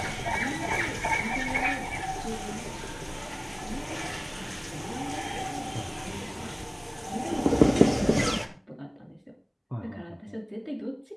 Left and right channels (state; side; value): identical; both; correlation 1.00